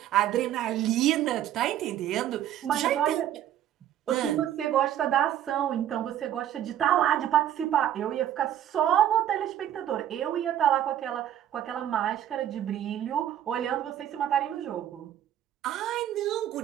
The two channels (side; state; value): left; quieter; 11.2 dB